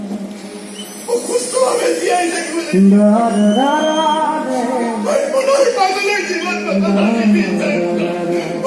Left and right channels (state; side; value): identical; both; correlation 1.00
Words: অসুস্থভাৱে জীয়াই থাকিবলৈ মই পুনৰ পাগলৰ জীৱন